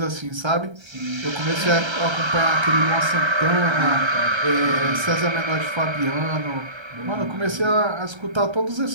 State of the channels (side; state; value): left; late; 1.3 ms